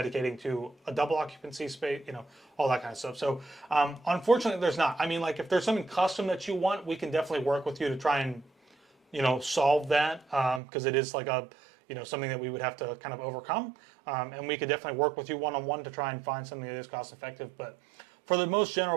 to a double occupancy space, you know, all that kind of stuff. So unfortunately, there's not. I mean, like if there's something custom that you want, we can definitely work with you to try and, you know, solve that, because it is like a, you know, something that we would have to kind of overcome. And we could definitely work with you one-on-one to try and find something that is cost effective. But for the most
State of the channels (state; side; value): drops out; left; at 10.6 s